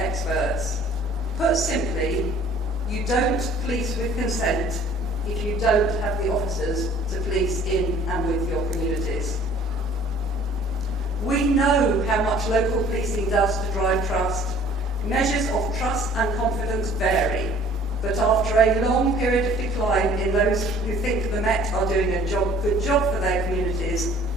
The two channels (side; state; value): both; normal; correlation 0.53